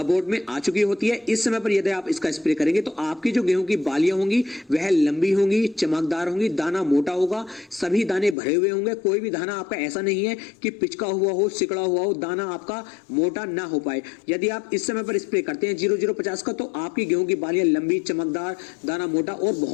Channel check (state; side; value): drops out; right; at 8.3 s